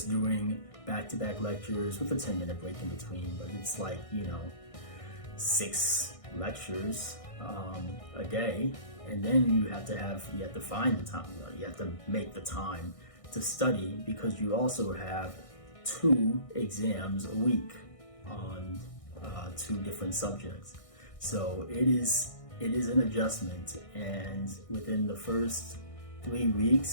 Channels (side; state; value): right; late; 1.6 ms